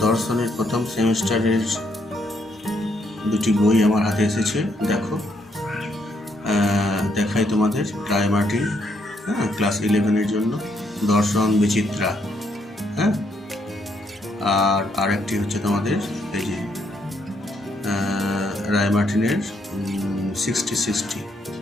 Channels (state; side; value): normal; both; correlation 0.73